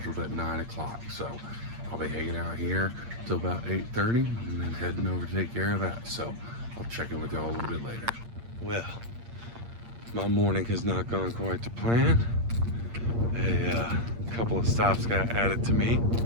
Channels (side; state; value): left; late; 8.6 ms